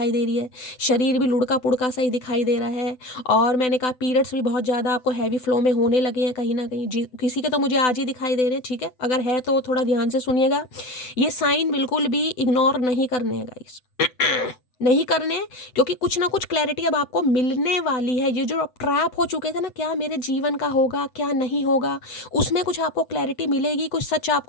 दे रही है, शरीर भी लुढ़का पुड़का सा ही दिखाई दे रहा है, और मैंने कहा पीरियड्स भी बहुत ज़्यादा आपको हैवी फ्लो में होने लगे हैं कहीं ना कहीं, किसी के तो मुझे आज ही दिखाई दे रहे हैं, ठीक है। अगर है तो थोड़ा ध्यान से सुनिएगा, ये साइन बिल्कुल भी इग्नोर नहीं करने हैं गाइस, नहीं करने, क्योंकि कुछ ना कुछ क्लैरिटी अब आपको मिलने वाली है। ये जो अब ट्रैप हो चुके थे ना, क्या मेरे जीवन का होगा क्या नहीं होगा, उसमें कुछ आपको क्लैरिटी मिलेगी, कुछ सच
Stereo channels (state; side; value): late; right; 7.9 ms